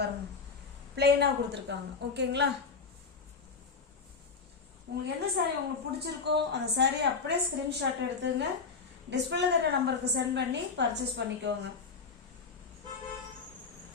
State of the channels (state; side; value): quieter; right; 5.0 dB